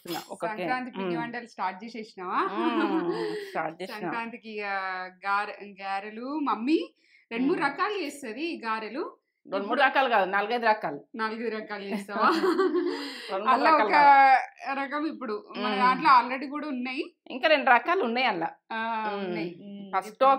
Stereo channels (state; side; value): identical; both; correlation 1.00